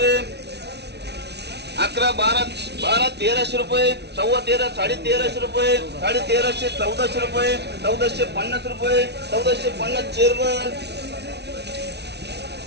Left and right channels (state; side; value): late; left; 0.49 ms